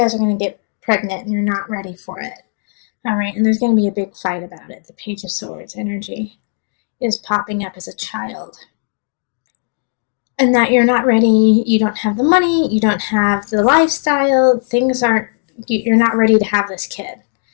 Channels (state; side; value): silent; right; digital silence